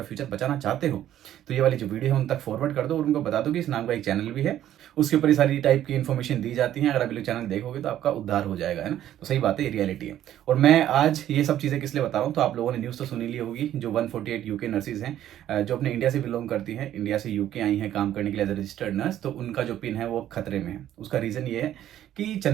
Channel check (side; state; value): left; quieter; 11.9 dB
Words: फ्यूचर बचाना चाहते हो तो ये वाली जो वीडियो है उन तक फॉरवर्ड कर दो, और उनको बता दो कि इस नाम का एक चैनल भी है, उसके ऊपर ये सारी टाइप की इन्फॉर्मेशन दी जाती है। अगर आप लोग चैनल देखोगे तो आपका उद्धार हो जाएगा, है ना। तो सही बात है, ये रियलिटी है। और मैं आज ये सब चीज़ें किस लिए बता रहा हूँ, तो आप लोगों ने न्यूज़ तो सुनी ली होगी, जो 148 यूके नर्सिस हैं जो अपने इंडिया से बिलोंग करती हैं, इंडिया से यूके आई हैं काम करने के लिए एज ए रजिस्टर्ड नर्स, तो उनका जो पिन है वो खतरे में है। उसका रीज़न ये है कि